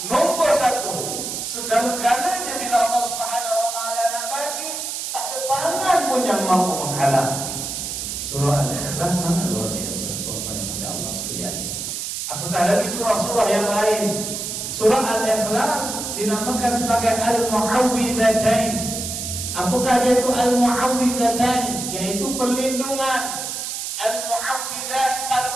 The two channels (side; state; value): right; noise; hiss, 5 dB below the sound